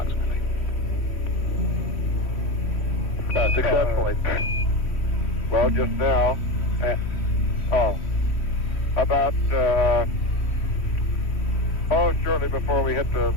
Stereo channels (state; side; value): late; right; 3.1 ms